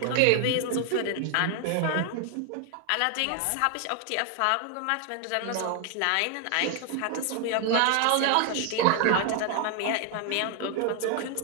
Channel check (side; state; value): both; different; correlation 0.00